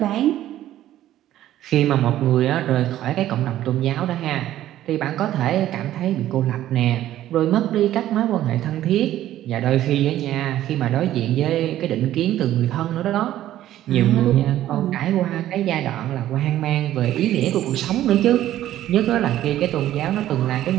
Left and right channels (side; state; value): left; quieter; 13.1 dB